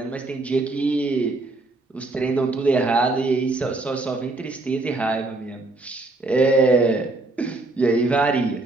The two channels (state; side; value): quieter; left; 3.1 dB